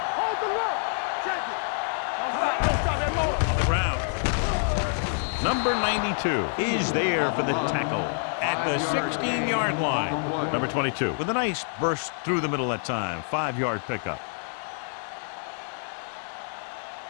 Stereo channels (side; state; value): right; silent; 60 dB below the other